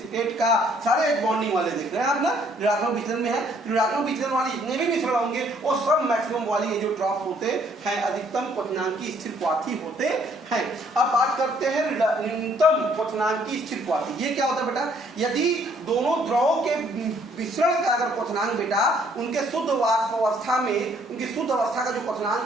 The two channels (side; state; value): both; normal; correlation 0.64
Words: का, सारे H बॉन्डिंग वाले देख रहे हैं आप ना, ऋणात्मक विचलन में है। ऋणात्मक विचलन वाले जितने भी मिश्रण होंगे वो सब मैक्सिमम वाली जो ड्रॉप्स होते हैं अधिकतम क्वथनांकी स्थिर क्वाथी होते हैं। अब बात करते हैं न्यूनतम क्वथनांकी स्थिर क्वाथी। ये क्या होता है बेटा? यदि दोनों द्रवों के मिश्रण का अगर क्वथनांक बेटा उनके शुद्ध वाष्प अवस्था में उनकी शुद्ध अवस्था का जो